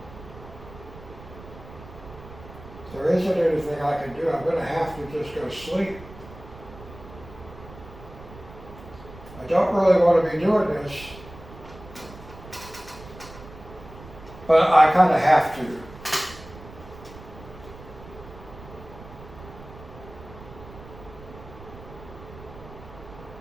If there isn't anything I can do, I'm going to have to just go sleep. I don't really want to be doing this, but I kind of have to.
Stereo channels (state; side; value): noise; right; rumble, 17 dB below the sound